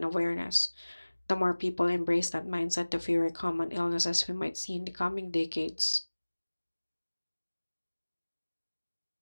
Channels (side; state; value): both; inverted; correlation -1.00